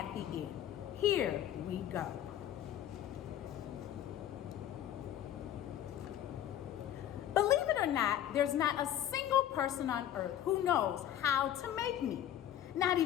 the end. Here we go. Believe it or not, there's not a single person on earth who knows how to make meat. Not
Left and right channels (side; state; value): right; quieter; 11.4 dB